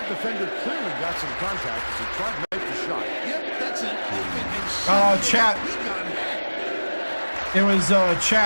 defender clearly got some contact as he tried to make the shot. Yep, that's an open and Chat. It was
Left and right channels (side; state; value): both; inverted; correlation -1.00